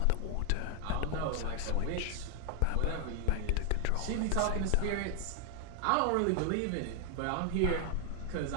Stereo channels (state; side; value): different; both; correlation 0.00